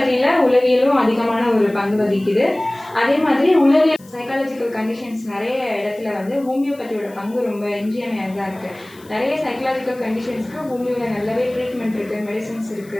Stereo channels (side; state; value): left; noise; hiss, 25 dB below the sound